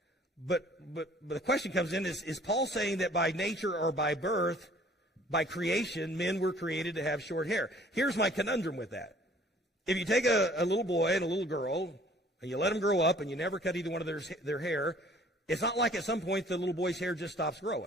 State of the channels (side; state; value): both; normal; correlation 0.55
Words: But the question comes in, is Paul saying that by nature or by birth, by creation, men were created to have short hair? Here's my conundrum with that. If you take a little boy and a little girl, and you let them grow up, and you never cut either one of their hair, it's not like at some point the little boy's hair just stops